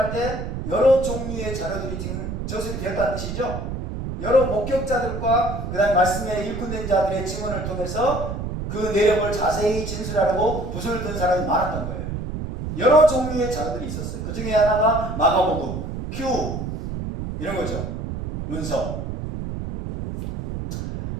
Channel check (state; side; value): noise; right; rumble, 5 dB below the sound